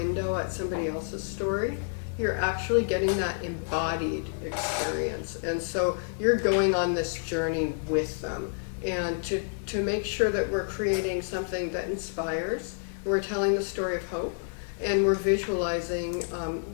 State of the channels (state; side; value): silent; right; digital silence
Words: at somebody else's story, you're actually getting that embodied experience. And so you're going on this journey with them. And to make sure that we're creating something that inspires, we're telling the story of hope, and we're visualizing